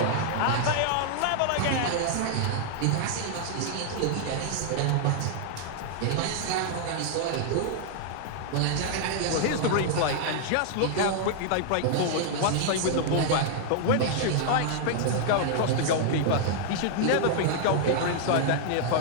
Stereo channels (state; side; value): different; both; correlation 0.00